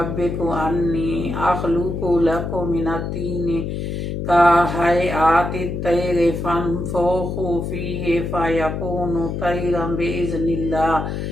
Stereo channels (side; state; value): left; noise; hum, 4 dB below the sound